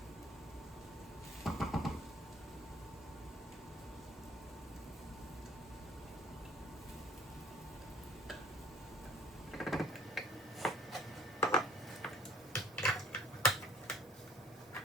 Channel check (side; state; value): both; normal; correlation 0.51